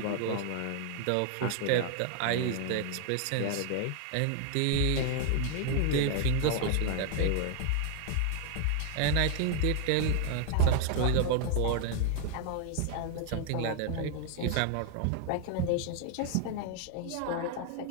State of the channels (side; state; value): both; different; correlation 0.00